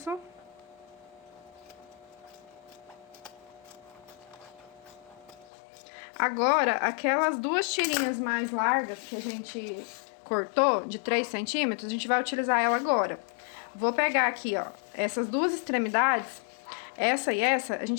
Agora, aquelas duas tirinhas mais largas que a gente cortou, de 3 centímetros, a gente vai utilizar ela agora. Vou pegar aqui, ó, essas duas extremidades, essa e essa, a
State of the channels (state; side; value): drops out; right; at 5.5 s